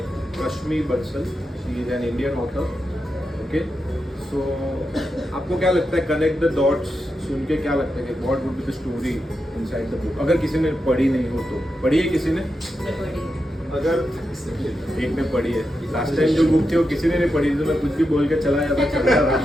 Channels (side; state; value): both; normal; correlation 0.87